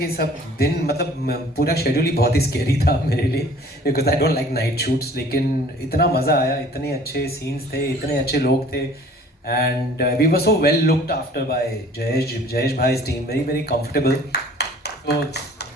सब दिन, मतलब पूरा शेड्यूल ही बहुत ही स्केरी था मेरे लिए, because I don't like night shoots. लेकिन इतना मज़ा आया, इतने अच्छे सीन्स थे, इतने अच्छे लोग थे, and we were so well looked after by Jayesh भाई's टीम, वेरी वेरी कंफर्टेबल. तो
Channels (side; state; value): both; normal; correlation 0.51